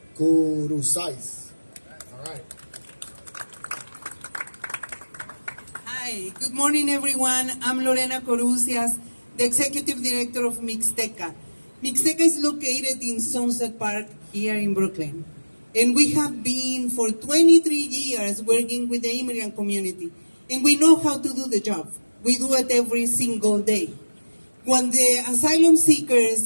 Curuzais. All right. Hi, good morning everyone. I'm Lorena Corucias, the Executive Director of Mixteca. Mixteca is located in Sunset Park here in Brooklyn. And we have been for 23 years working with the immigrant community. And we know how to do the job. We do it every single day. When the asylum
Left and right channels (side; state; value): both; inverted; correlation -1.00